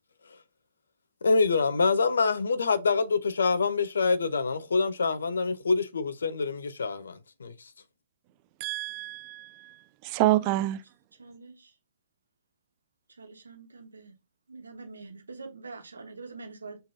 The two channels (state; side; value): inverted; both; correlation -0.68